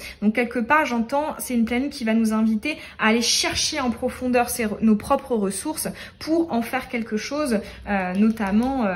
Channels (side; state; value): both; identical; correlation 1.00